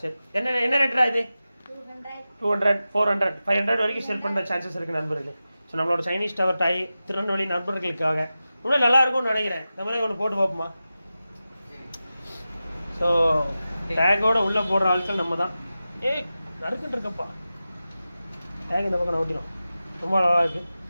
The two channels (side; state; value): both; inverted; correlation -0.94